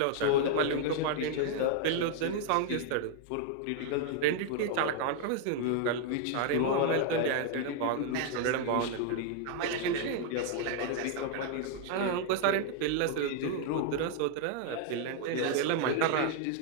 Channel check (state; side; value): different; both; correlation 0.00